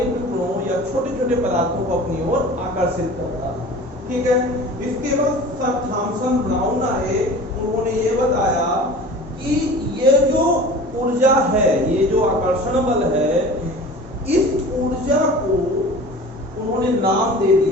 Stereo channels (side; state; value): both; normal; correlation 0.40